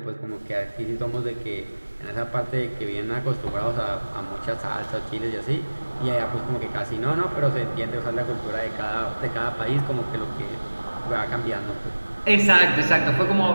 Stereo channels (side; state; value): both; inverted; correlation -1.00